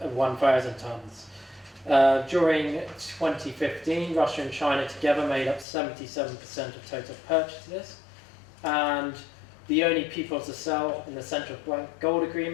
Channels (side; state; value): right; drops out; at 5.7 s